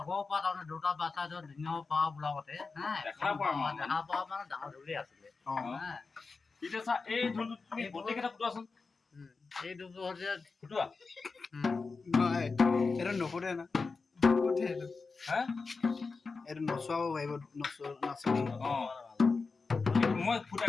পৰা তাৰমানে দুটা বাচ্চা দিনৰ পৰা বোলাবতে হা দেখা পোৱা মানে ডাঙৰ ঢোলেই আছিলে এতিয়া চা এই ঢোলটো তুমি গোটেইকেইটা ফুটোৱাচোন এই ঢোলটো হৈছে ফুটোৱা এইটো নুফুটে না হা এইটো নচুৱাব পাৰিব নাচনি মই ফুটাই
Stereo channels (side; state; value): right; quieter; 4.4 dB